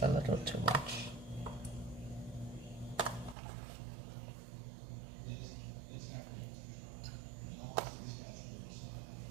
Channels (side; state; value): left; drops out; at 3.4 s